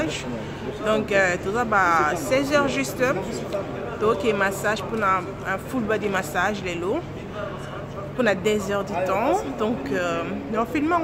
Donc tout ça 16h juste. Donc massage pour un full body massage les lots pour 2 heures du temps. Donc dans le film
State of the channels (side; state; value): both; identical; correlation 1.00